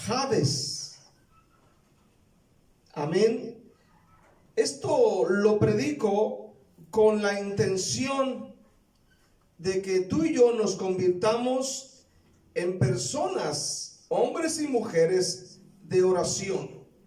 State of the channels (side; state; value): both; identical; correlation 1.00